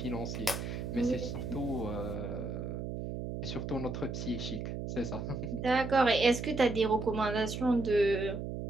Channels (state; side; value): noise; right; hum, 5 dB below the sound